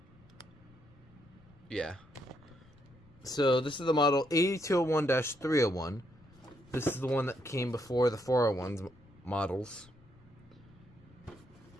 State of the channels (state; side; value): noise; left; rumble, 26 dB below the sound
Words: Yeah. So this is the model 8201-301. This is the one that came before the 401's models.